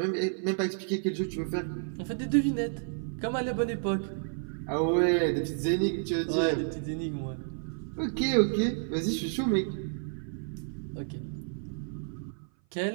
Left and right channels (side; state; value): left; silent; 55 dB below the other